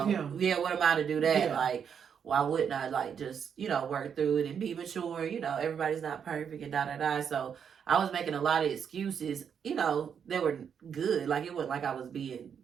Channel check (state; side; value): quieter; left; 7.5 dB